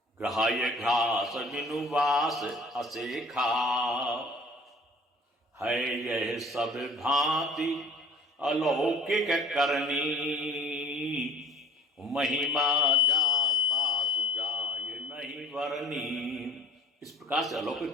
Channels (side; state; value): both; normal; correlation 0.47